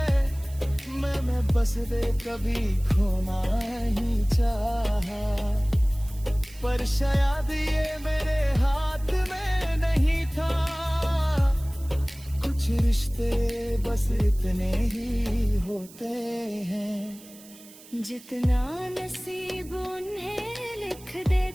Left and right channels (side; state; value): right; noise; hiss, 21 dB below the sound